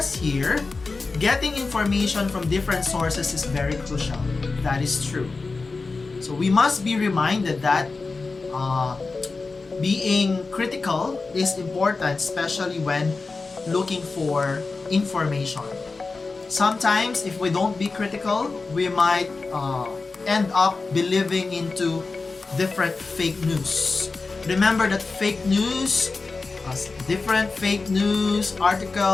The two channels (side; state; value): right; quieter; 4.0 dB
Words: here, getting information from different sources is very crucial. That is true. So we must be reminded that being critical is important, especially when looking for information. Sometimes if we don't be critical, we might end up believing into different fake news. Remember that different fake news